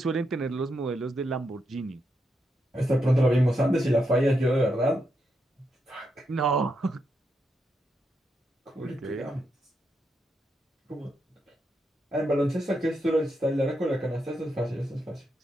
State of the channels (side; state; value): both; normal; correlation 0.83